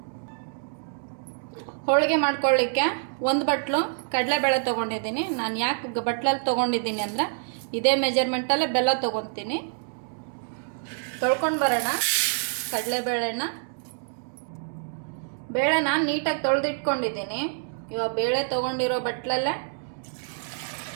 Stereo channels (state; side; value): silent; left; digital silence